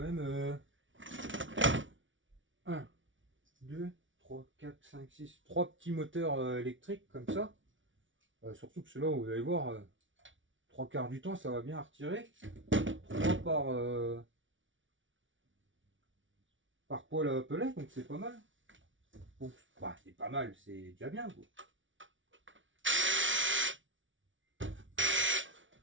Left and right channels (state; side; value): late; left; 0.56 ms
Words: 1, 2, 3, 4, 5, 6, 3 petits moteurs électriques comme ça. Surtout que ceux-là, vous allez voir, 3 quarts du temps, ça va bien retirer. 3 par poêle à pellet, donc c'est pas mal. Donc, bah, c'est pas mal, c'est déjà bien, quoi.